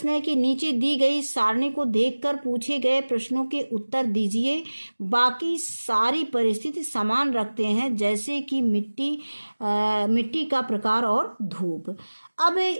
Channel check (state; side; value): inverted; both; correlation -1.00